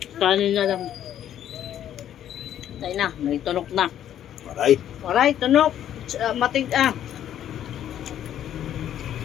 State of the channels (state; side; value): quieter; right; 10.7 dB